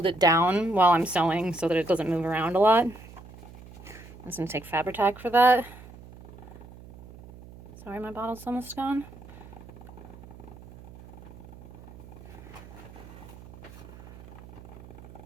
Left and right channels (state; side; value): noise; right; hum, 18 dB below the sound